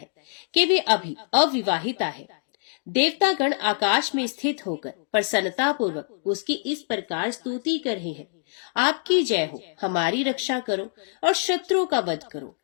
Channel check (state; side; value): silent; right; digital silence